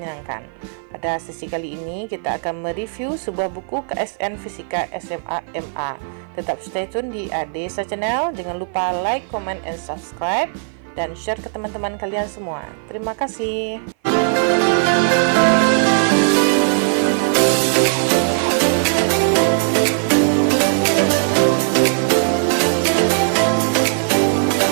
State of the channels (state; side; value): silent; left; 56 dB below the other